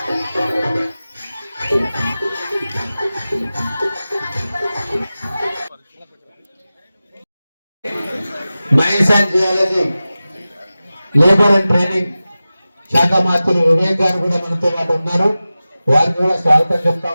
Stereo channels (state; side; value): inverted; both; correlation -0.96